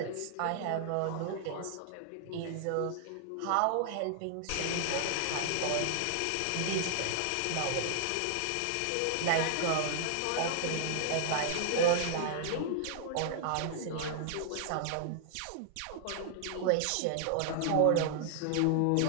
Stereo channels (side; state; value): both; different; correlation -0.01